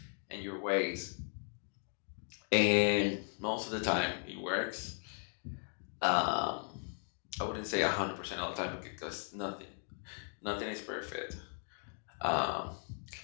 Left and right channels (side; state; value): right; silent; 53 dB below the other